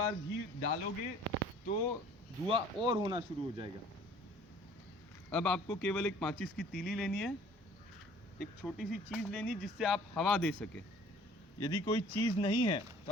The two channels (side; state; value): both; normal; correlation 0.52